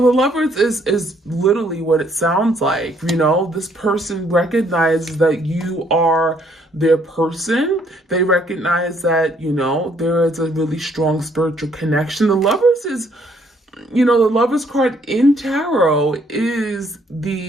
Lovers is literally what it sounds like. This person recognizes that you are their person. They recognize that, there is a really strong spiritual connection. The Lovers is, the Lovers card in tarot is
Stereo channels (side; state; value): both; normal; correlation 0.66